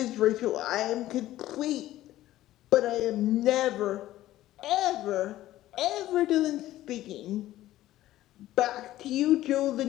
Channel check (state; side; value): quieter; right; 14.7 dB